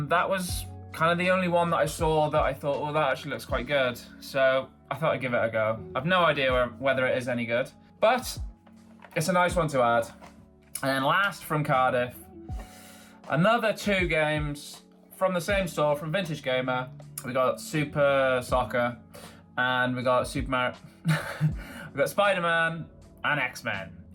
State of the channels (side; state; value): both; identical; correlation 1.00